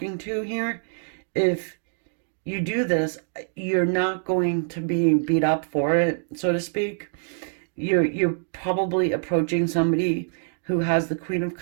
to here. If you do this, you're not going to be beat up for it, so to speak. You're probably approaching somebody who has the Queen of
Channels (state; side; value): silent; left; digital silence